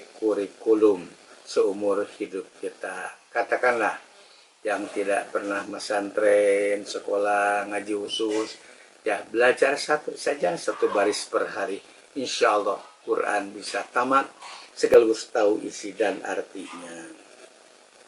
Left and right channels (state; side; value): identical; both; correlation 1.00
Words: kurikulum seumur hidup kita. Katakanlah yang tidak pernah pesantren, sekolah, ngaji khusus, ya belajar 1 saja 1 baris per hari. Insya Allah Quran bisa tamat sekaligus tahu isi dan artinya.